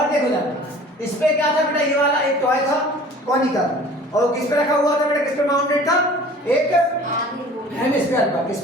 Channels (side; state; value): both; normal; correlation 0.46